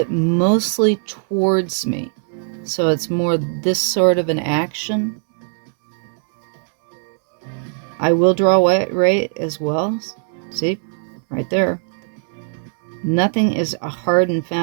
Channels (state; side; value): silent; left; 66 dB below the other